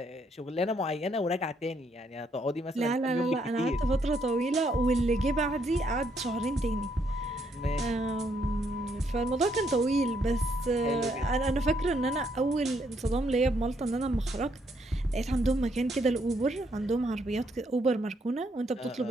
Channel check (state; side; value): normal; both; correlation 0.73